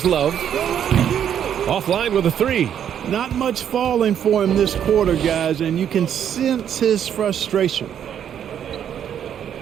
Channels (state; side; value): quieter; left; 9.3 dB